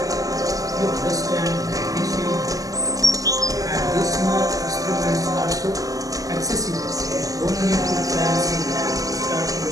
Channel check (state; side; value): late; left; 0.17 ms